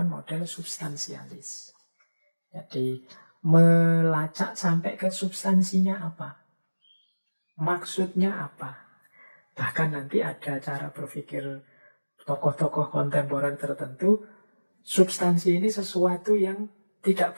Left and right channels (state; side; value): inverted; both; correlation -1.00